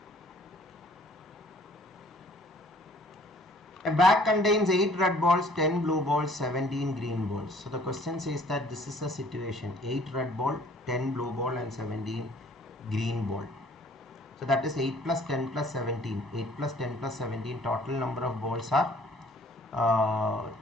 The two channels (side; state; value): both; normal; correlation 0.56